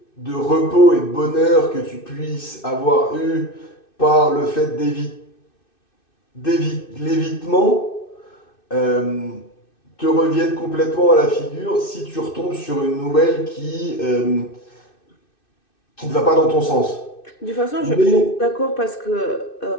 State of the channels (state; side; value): late; right; 2.6 ms